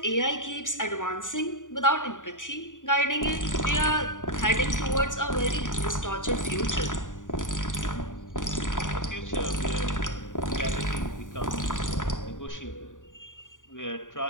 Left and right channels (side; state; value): right; late; 0.87 ms